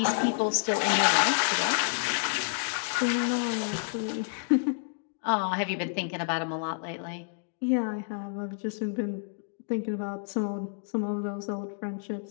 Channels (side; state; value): right; silent; digital silence